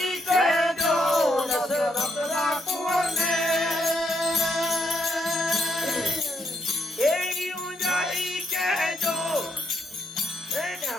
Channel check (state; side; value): normal; both; correlation 0.76